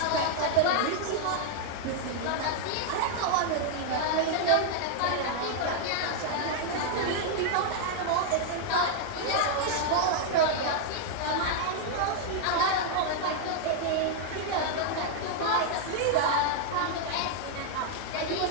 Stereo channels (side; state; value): both; different; correlation 0.00